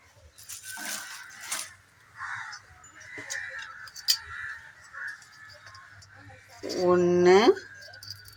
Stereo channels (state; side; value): identical; both; correlation 1.00